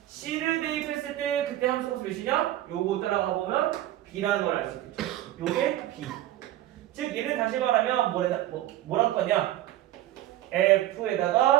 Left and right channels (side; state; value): left; quieter; 14.0 dB